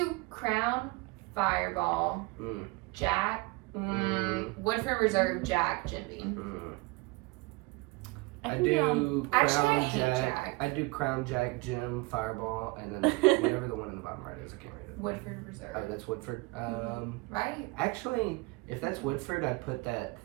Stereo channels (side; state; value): left; quieter; 24.9 dB